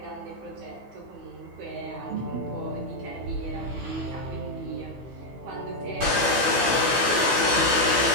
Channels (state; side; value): late; left; 16 ms